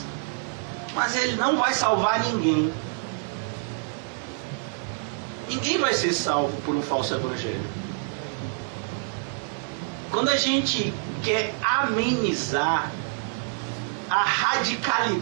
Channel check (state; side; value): silent; left; 61 dB below the other